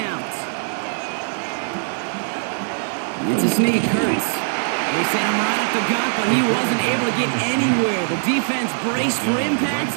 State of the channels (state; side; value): silent; left; digital silence